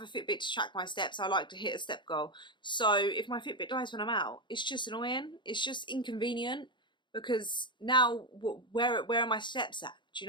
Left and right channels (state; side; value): late; right; 0.23 ms